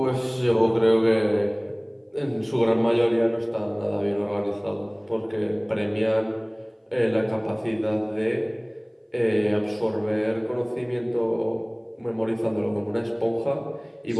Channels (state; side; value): identical; both; correlation 1.00